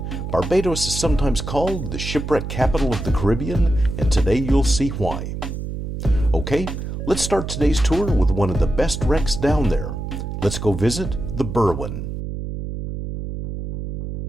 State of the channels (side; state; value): right; noise; hum, 5 dB below the sound